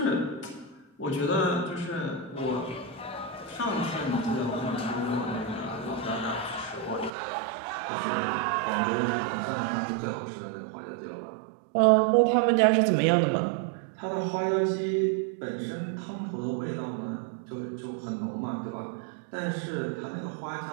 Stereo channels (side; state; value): left; drops out; at 7.1 s